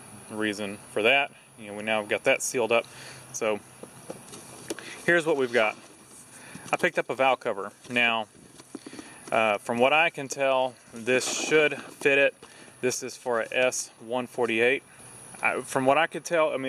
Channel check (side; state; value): both; identical; correlation 1.00